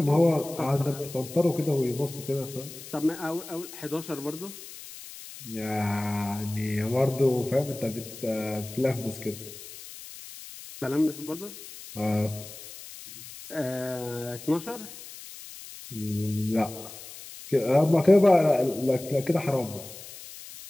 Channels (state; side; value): noise; left; hiss, 15 dB below the sound